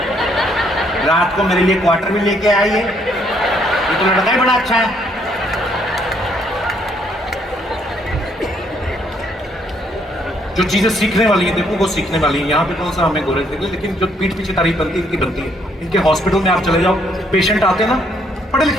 रात को मेरे लिए क्वार्टर में लेके आइए, ये तो लड़का ही बड़ा अच्छा है। जो चीजें सीखने वाली है देखो वो सीखने वाली है। यहाँ पे कौन सा हमें गोरे थे, लेकिन जो पीठ पीछे तारीफ बनती है इनकी बनती है। इनके हॉस्पिटल में आप चले जाओ, पेशेंट आते हैं ना, पढ़े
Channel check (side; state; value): both; normal; correlation 0.69